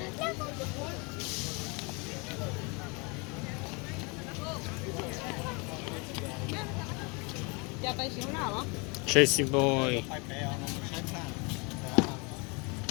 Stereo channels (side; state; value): right; quieter; 30.4 dB